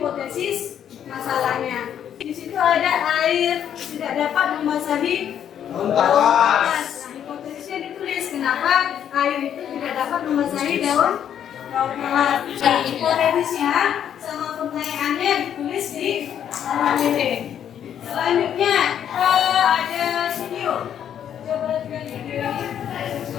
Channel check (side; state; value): right; quieter; 9.5 dB